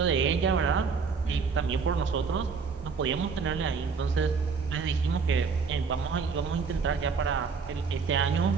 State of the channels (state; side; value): quieter; left; 5.4 dB